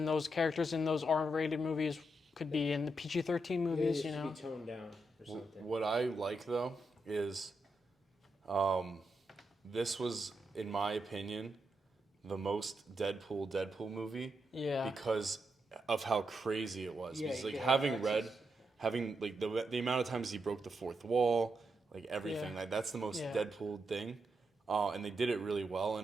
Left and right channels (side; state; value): both; normal; correlation 0.83